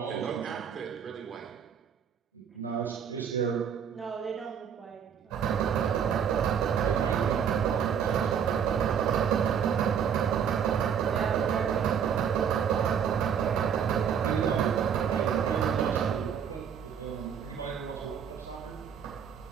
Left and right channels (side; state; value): left; quieter; 7.8 dB